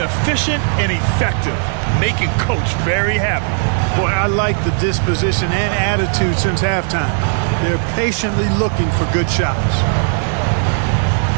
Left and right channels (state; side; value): silent; left; 56 dB below the other